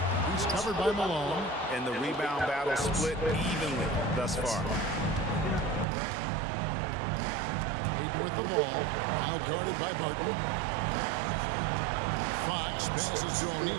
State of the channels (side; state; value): left; drops out; at 5.9 s